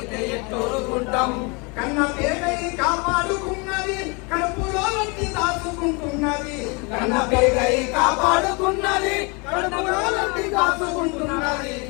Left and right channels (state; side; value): quieter; right; 30.5 dB